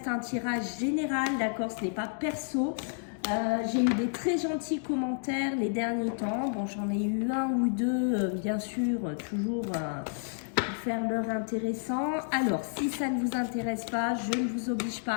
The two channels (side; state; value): right; silent; digital silence